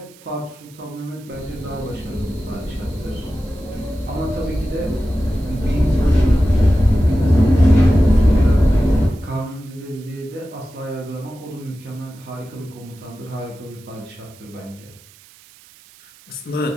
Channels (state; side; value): noise; right; hiss, 25 dB below the sound